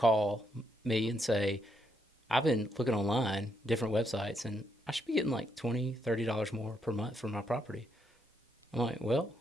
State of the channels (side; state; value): both; normal; correlation 0.77